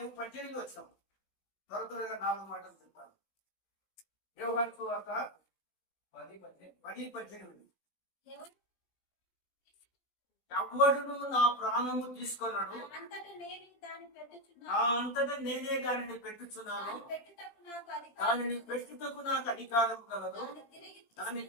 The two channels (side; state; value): right; late; 17 ms